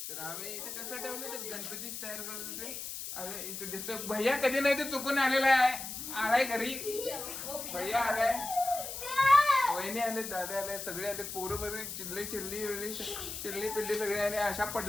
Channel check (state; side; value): noise; left; hiss, 7 dB below the sound